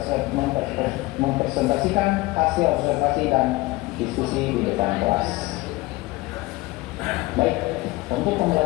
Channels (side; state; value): right; quieter; 20.5 dB